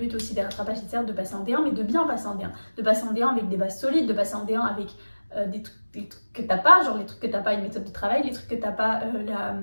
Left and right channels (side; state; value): both; inverted; correlation -1.00